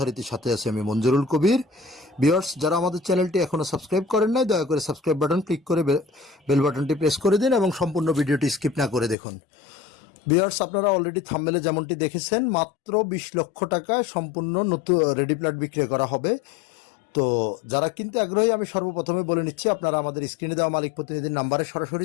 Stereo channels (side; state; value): right; drops out; at 9.2 s